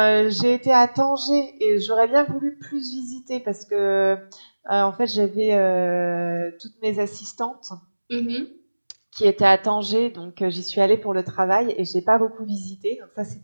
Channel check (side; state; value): both; inverted; correlation -1.00